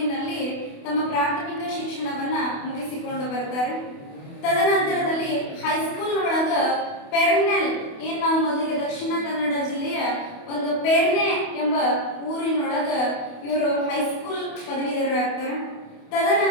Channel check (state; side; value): late; right; 28 ms